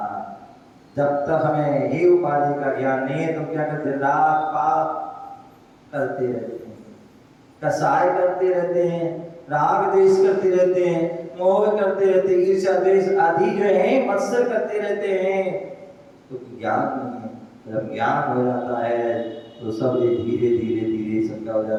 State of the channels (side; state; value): both; identical; correlation 1.00